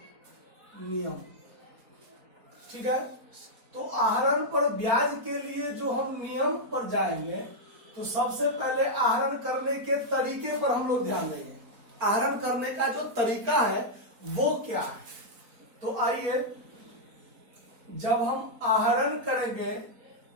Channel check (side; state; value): left; late; 4.4 ms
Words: नियम। ठीक है, तो आहरण पर ब्याज के लिए जो हम नियम पर जाएंगे तो सबसे पहले आहरण करने के तरीके पर हम लोग ध्यान देंगे। आहरण करने का जो तरीका है वो क्या है। तो आइए, जब हम आहरण करेंगे